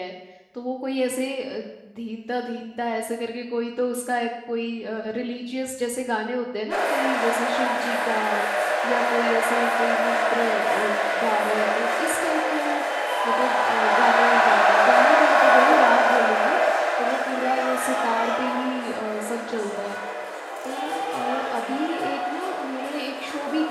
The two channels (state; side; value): identical; both; correlation 1.00